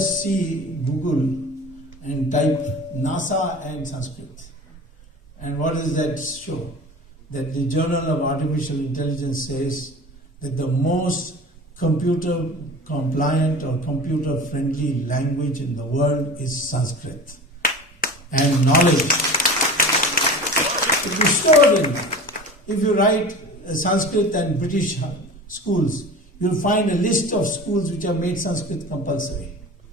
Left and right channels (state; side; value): normal; both; correlation 0.36